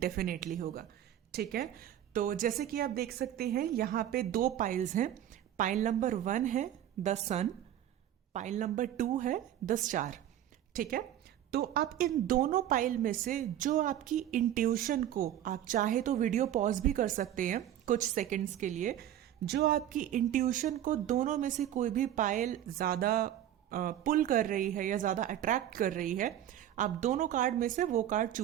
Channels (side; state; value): left; quieter; 11.6 dB